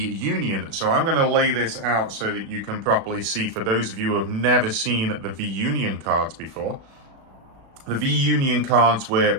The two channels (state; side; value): late; left; 36 ms